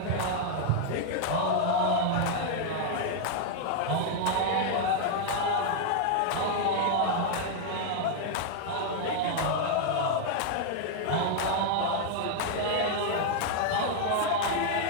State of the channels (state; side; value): different; both; correlation 0.00